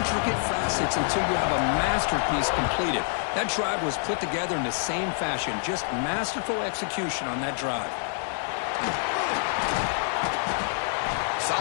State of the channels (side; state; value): right; silent; digital silence